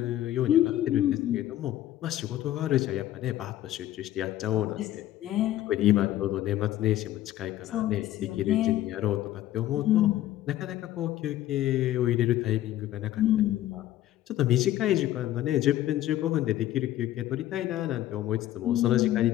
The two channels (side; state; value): right; quieter; 13.7 dB